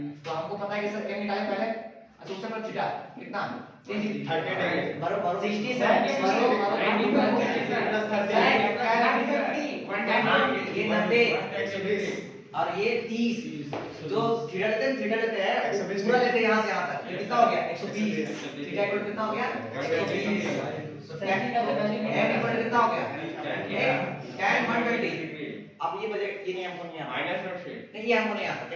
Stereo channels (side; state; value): both; identical; correlation 1.00